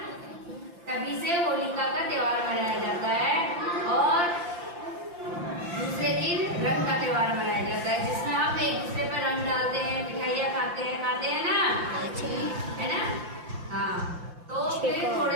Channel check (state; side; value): late; left; 5.8 ms